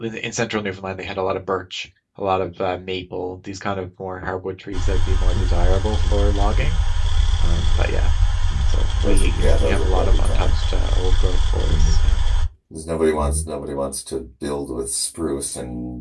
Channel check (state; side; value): identical; both; correlation 1.00